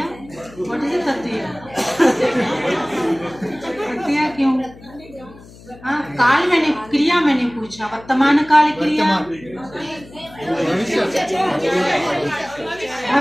व्हाट इज ततिया? ततिया क्यों? हाँ, काल मैंने, क्रिया मैंने पूछा, वर्तमान काल क्रिया,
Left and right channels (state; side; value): noise; left; hum, 21 dB below the sound